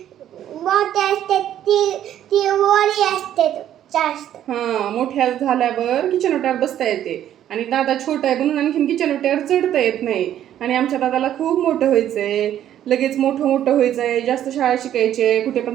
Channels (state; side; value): quieter; left; 11.2 dB